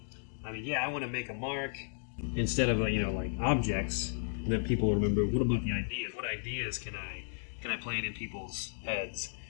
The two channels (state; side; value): silent; right; digital silence